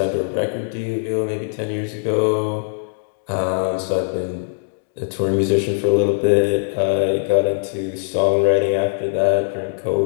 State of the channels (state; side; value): silent; right; digital silence